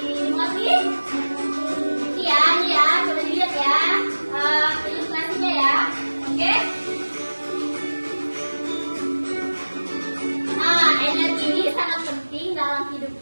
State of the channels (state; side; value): inverted; both; correlation -1.00